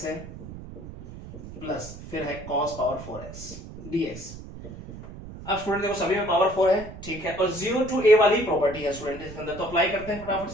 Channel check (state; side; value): noise; right; rumble, 13 dB below the sound